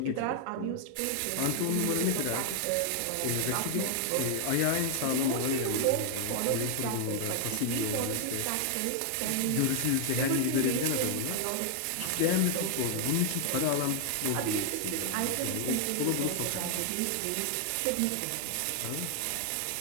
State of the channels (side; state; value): both; different; correlation 0.00